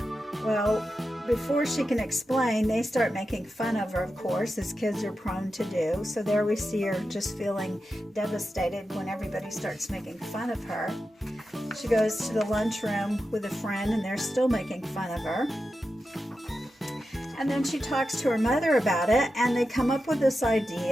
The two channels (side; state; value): both; normal; correlation 0.90